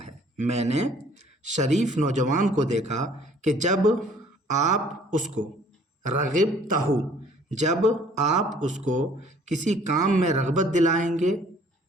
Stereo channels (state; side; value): normal; both; correlation 0.56